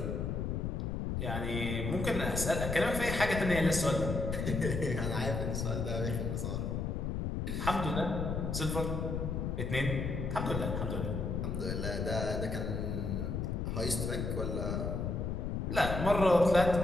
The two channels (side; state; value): left; noise; rumble, 1 dB below the sound